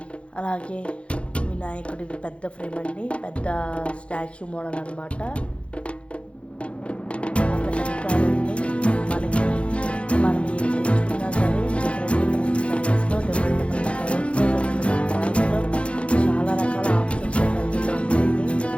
అలాగే వినాయకుడిది పెద్ద ఫ్రేమ్ అండి, పెద్ద స్టాచ్యూ మోడల్ అనమాట. వెనకాలండి మనకి మనం ఏం తెచ్చుకున్నా సరే డిఫరెంట్ సైజెస్లో, డిఫరెంట్ కలర్స్లో, చాలా రకాల ఆప్షన్స్ అవైలబుల్లో ఉంటాయండి.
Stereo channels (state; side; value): late; right; 0.060 ms